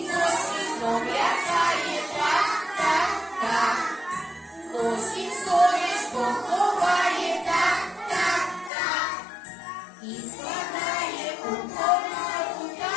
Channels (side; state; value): right; drops out; at 8.7 s